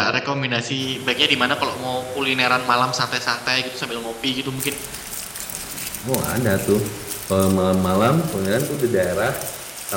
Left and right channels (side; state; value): both; identical; correlation 1.00